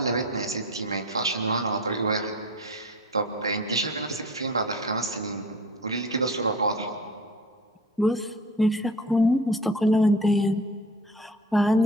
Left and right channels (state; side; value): normal; both; correlation 0.39